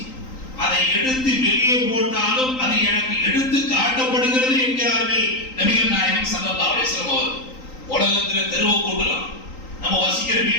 அதை எடுத்து வெளியே போட்டாலும் அது எனக்கு எடுத்து காட்டப்படுகிறது என்கிறார்கள் நபிகள் நாயகம் ஸல்லல்லாஹு அலைஹி வஸல்லம் அவர்கள். உலகத்துல தெருவை கூட்டலாம், நம்ம வசிக்கிற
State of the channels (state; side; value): late; right; 3.8 ms